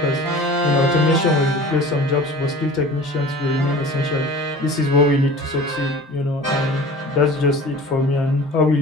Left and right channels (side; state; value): both; normal; correlation 0.41